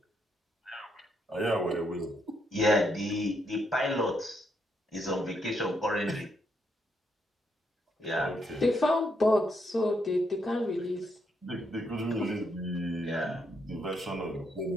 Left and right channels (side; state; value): both; normal; correlation 0.76